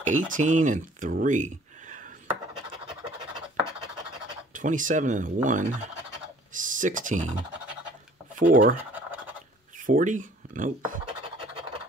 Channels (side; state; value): both; normal; correlation 0.54